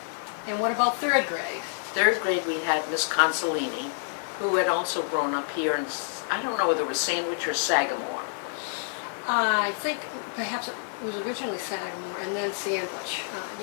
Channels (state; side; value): silent; right; 59 dB below the other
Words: And what about 3rd grade? 3rd grade we had Miss Consolini, who had also grown up here in, I don't know whether it was Sandwich or Sagamore. I think perhaps it was originally Sagamore and then Sandwich.